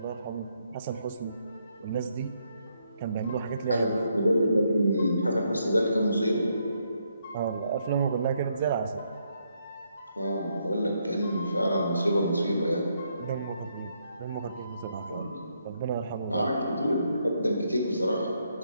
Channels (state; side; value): inverted; both; correlation -0.76